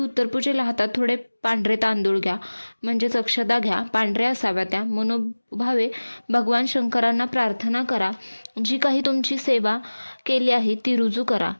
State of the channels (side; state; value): both; inverted; correlation -1.00